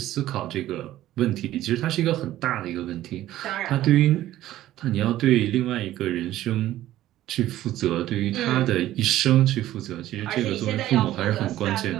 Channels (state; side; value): quieter; left; 14.1 dB